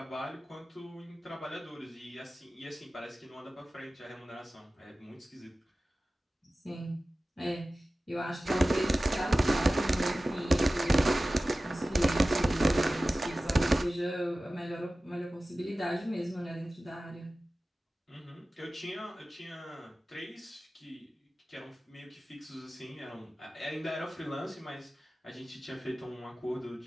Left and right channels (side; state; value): both; normal; correlation 0.96